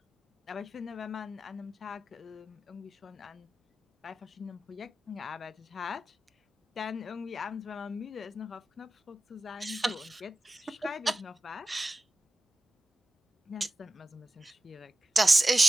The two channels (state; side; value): normal; both; correlation 0.94